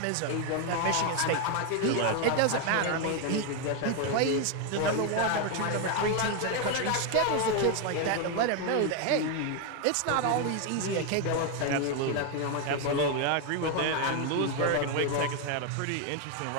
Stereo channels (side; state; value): both; different; correlation 0.01